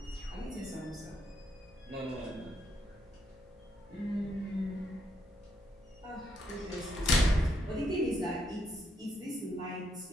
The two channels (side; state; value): both; normal; correlation 0.77